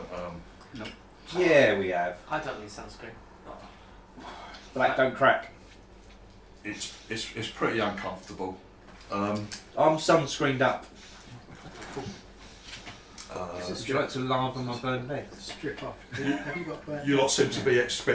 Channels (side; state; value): both; identical; correlation 1.00